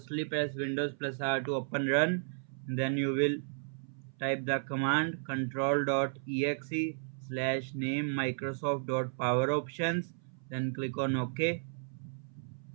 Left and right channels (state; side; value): silent; left; 55 dB below the other